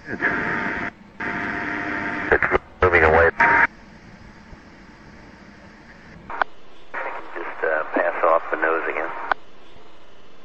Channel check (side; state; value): both; identical; correlation 1.00